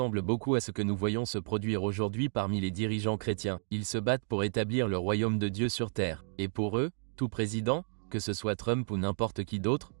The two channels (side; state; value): left; silent; digital silence